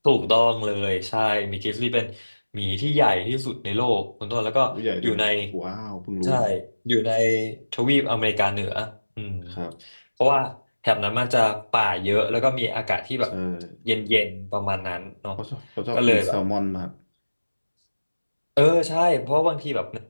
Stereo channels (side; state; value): both; inverted; correlation -1.00